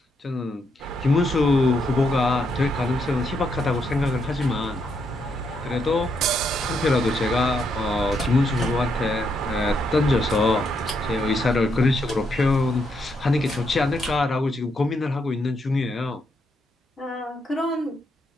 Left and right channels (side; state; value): both; normal; correlation 0.78